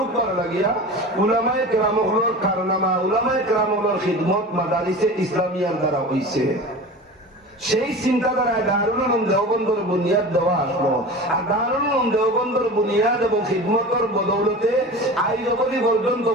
লাগিয়া উলামায়ে কেরামগুলোর কারনামা, উলামায়ে কেরামগুলোর খিদমত মাদারিসে ইসলামিয়ার দ্বারা হইছে। সেই চিন্তাধারায় দারুল উলুম দেওবন্দর বুনিয়াদ দেওয়া আসলো। আর দারুল উলুম দেওবন্দর বুনিয়াদ এবং খিদমতের বদৌলতে আজ অবধি পর্যন্ত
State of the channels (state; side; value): normal; both; correlation 0.34